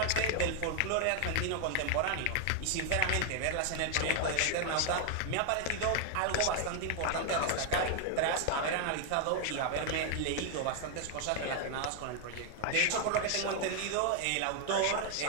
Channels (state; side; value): different; both; correlation 0.00